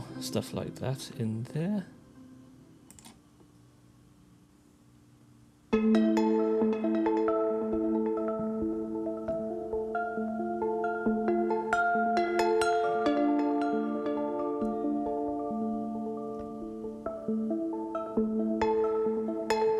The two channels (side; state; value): both; identical; correlation 1.00